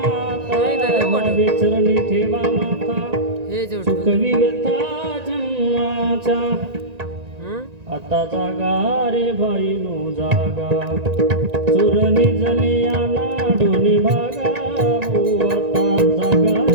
भावे चरणी ठेवा माथा, चुकवी व्यथा जन्माचा. आता जागा रे भाई नो जागा, चोर निजले याना दोन्ही भागा. आता जागा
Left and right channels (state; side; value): late; left; 1.9 ms